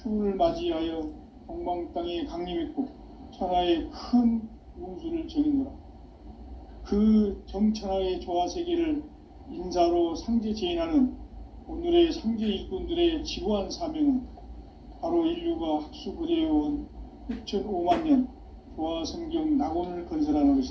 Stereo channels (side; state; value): both; identical; correlation 1.00